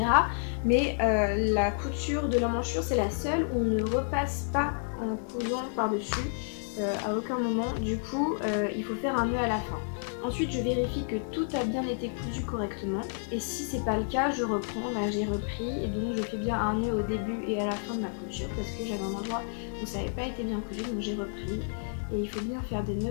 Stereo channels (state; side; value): silent; right; 58 dB below the other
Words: Mais la couture de l'emmanchure, c'est la seule où on ne repasse pas en cousant par-dessus à aucun moment. Du coup, il faut faire un nœud à la fin. Ensuite, je vérifie que tout a bien été cousu correctement, et si c'est pas le cas, je reprends. Là, j'ai repris, et donc je fais bien un nœud au début et à la fin de ma couture parce que j'avais un endroit où ça n'avait pas été bien cousu, donc j'ai repris. Et il faut bien faire des